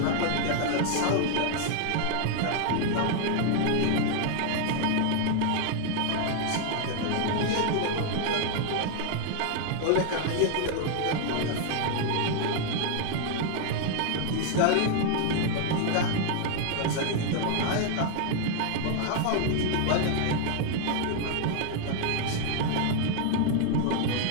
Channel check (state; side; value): different; both; correlation 0.00